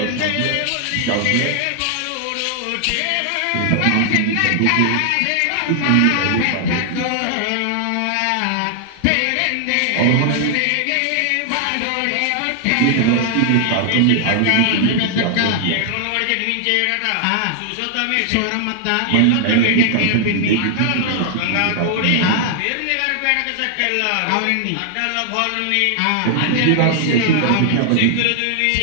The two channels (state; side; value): different; both; correlation 0.00